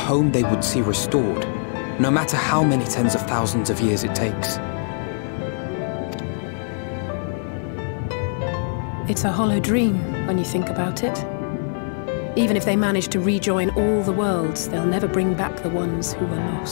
they would see restored, no matter how many tens of thousands of years it takes. It's a hollow dream when you think about it. Even if they manage to rejoin all the worlds, they'll never bring back the ones who were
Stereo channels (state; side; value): silent; right; 64 dB below the other